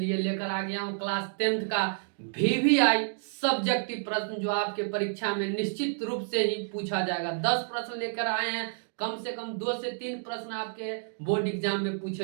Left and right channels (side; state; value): left; silent; digital silence